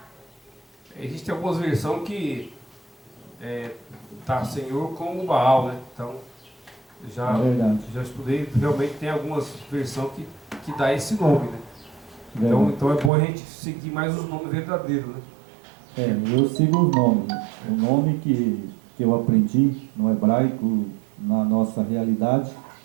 Existem algumas versões que tá Senhor com o Baal, né? Então, já estudei, realmente tem algumas versões que dá esse nome, né? Então é bom a gente seguir mais os nomes verdadeiros, né? Eu sigo os nomes. O nome que eu aprendi no hebraico, na nossa realidade,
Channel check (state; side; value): drops out; left; at 13.1 s